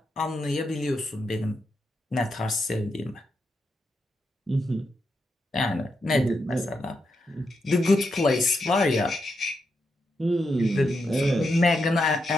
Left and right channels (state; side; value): normal; both; correlation 0.84